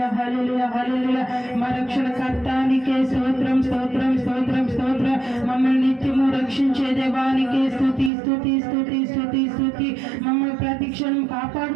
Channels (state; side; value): drops out; left; at 8.1 s